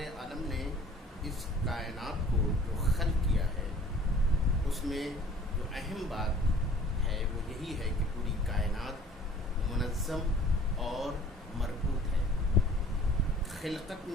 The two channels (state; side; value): normal; both; correlation 0.51